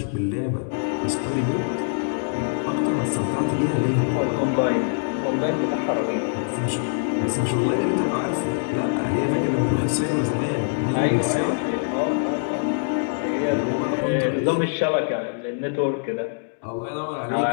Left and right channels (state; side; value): silent; right; digital silence